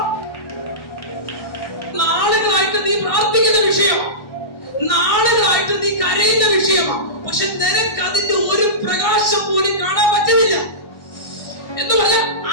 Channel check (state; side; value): late; right; 1.6 ms